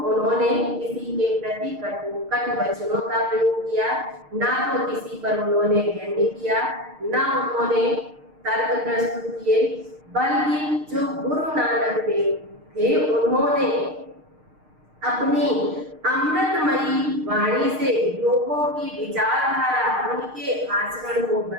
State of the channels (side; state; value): left; late; 6.5 ms